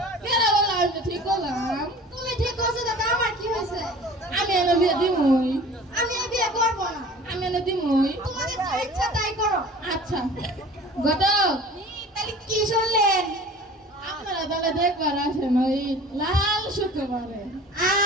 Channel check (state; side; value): normal; both; correlation 0.43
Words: কেন বললাম আমি ঠিক করলাম তুমি ঠিক করছো দাদা আমার কি হয়েছে আমি এনে বিয়ে দিমই আমি এই বিয়ে করবো না আমি এনে দিমই তোমাদের যা ইচ্ছা তাই করো আচ্ছা ঘটক তাহলে কি শুনলেন আপনারা তাহলে দেখবার আসেন ওই লাল শুক্রবারে